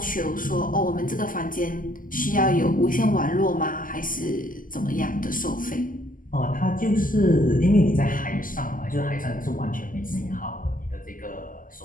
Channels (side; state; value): right; late; 0.40 ms